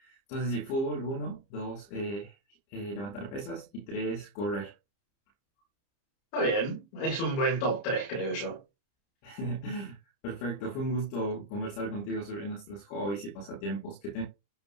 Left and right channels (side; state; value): right; late; 30 ms